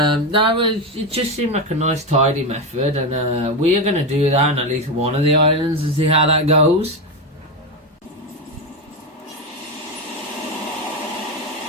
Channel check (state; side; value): normal; both; correlation 0.13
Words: it just seemed like a nice tidy method, and we are going to do that on at least one of the islands and see how that goes.